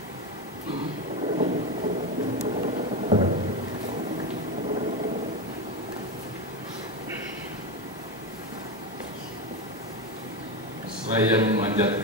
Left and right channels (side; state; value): both; normal; correlation 0.15